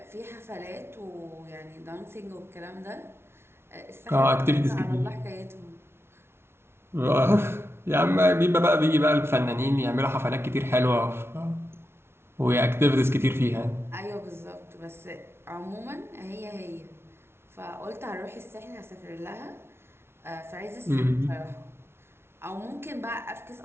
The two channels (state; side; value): late; left; 0.12 ms